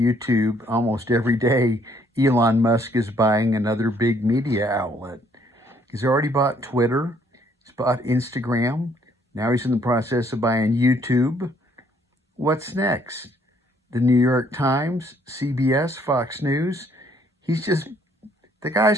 almost every day. Elon Musk is buying another big media outlet. He's already bought Twitter, he's bought Instagram. Now he's in the process of buying YouTube. What's next? The New York Times, CBS, Fox News. He's just, the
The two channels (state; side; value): normal; both; correlation 0.66